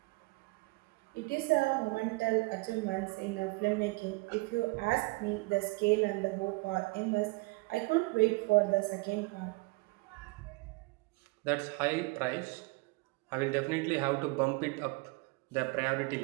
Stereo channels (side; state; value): left; quieter; 25.0 dB